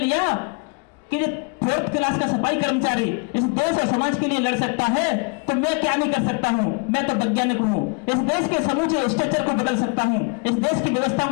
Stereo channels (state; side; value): quieter; right; 34.7 dB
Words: कि 4th क्लास का सफाई कर्मचारी इस देश और समाज के लिए लड़ सकता है तो मैं क्या नहीं कर सकता हूं? मैं तो वैज्ञानिक हूं, इस देश के समूचे स्ट्रक्चर को बदल सकता हूं, इस देश की व्यवस्था